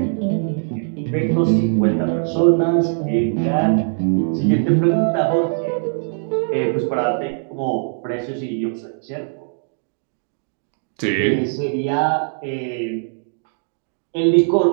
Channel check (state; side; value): silent; left; digital silence